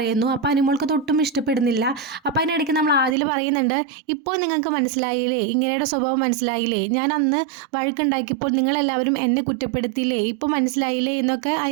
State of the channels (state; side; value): drops out; left; at 3.2 s